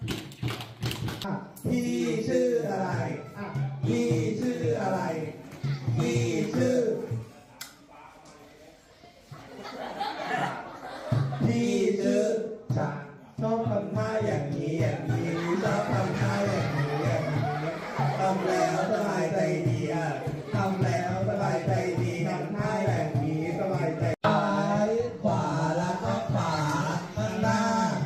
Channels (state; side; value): identical; both; correlation 1.00